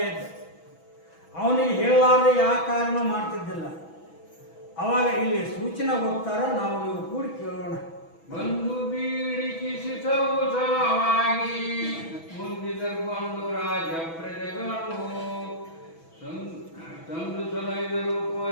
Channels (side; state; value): right; late; 6.1 ms